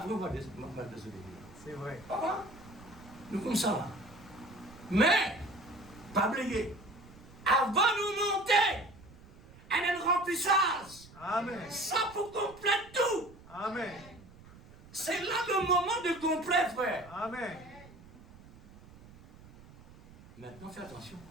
on va désobéir. C'est vrai. Ah, nous comme ça là. Mais, pas oublier, avant de nous monter, elle a une remplissage. Amen. Ça pour compléter tout. Amen. C'est là le moment de complet, frère. Amen. Maintenant, fais attention.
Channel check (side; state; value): right; noise; rumble, 21 dB below the sound